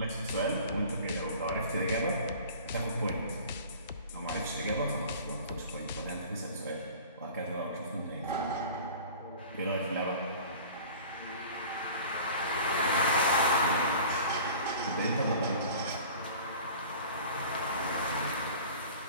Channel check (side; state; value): both; inverted; correlation -0.43